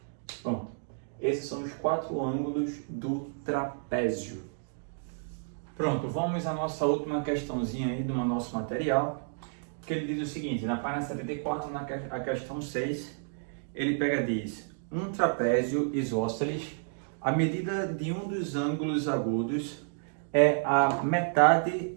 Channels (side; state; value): left; silent; digital silence